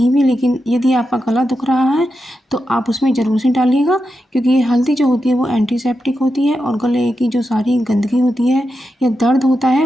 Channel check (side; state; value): both; normal; correlation 0.88